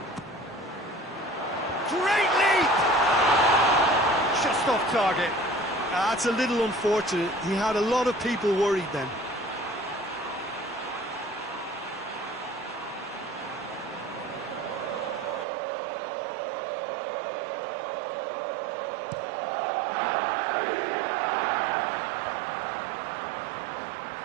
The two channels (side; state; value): left; drops out; at 15.5 s